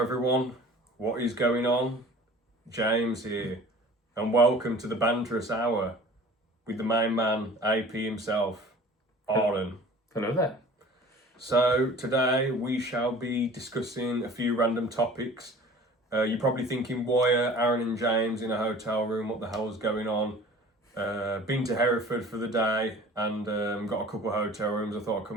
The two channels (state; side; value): normal; both; correlation 0.45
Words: What is going on? James here, and welcome to the Banterous Hour with the main man, AP himself, Arlen. Hello there. So today we shall be discussing a few random topics. You're probably thinking, why are Aaron and James in a hotel room? What the hell is going on? Been to Hereford for the day and got a couple of hotel rooms. I thought I'd come